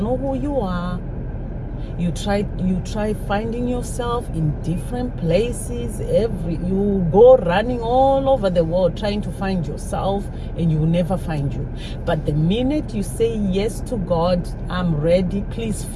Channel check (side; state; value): both; identical; correlation 1.00